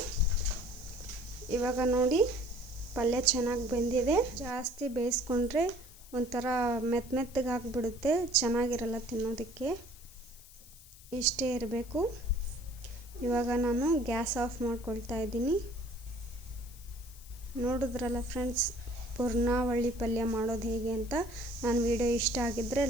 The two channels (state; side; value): noise; left; hiss, 21 dB below the sound